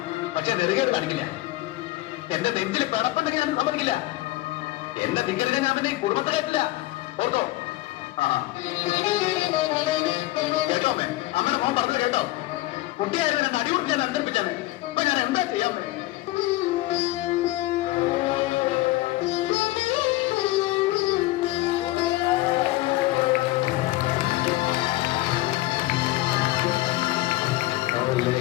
പക്ഷെ നെറുകേട് കാണിക്കില്ല. എന്റെ നെഞ്ചിൽ പിടപ്പുണ്ടെങ്കിൽ ഞാൻ സമ്മതിക്കില്ല. എന്റെ നിങ്ങളുടെ ഞാൻ പിന്നെ കുടുംബത്തെ കേട്ടില്ല. ഓർത്തോ? ആ കേട്ടോ അമ്മേ, അമ്മയുടെ മോൻ പറഞ്ഞു കേട്ടോ? കുട്ടിയായിരുന്നു എന്നെ അടികൊടുക്കാൻ അനുസരിപ്പിച്ചാണ്. അപ്പൊ ഞാൻ എന്താ ചെയ്യാൻ പറ്റും?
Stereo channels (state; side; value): quieter; right; 18.2 dB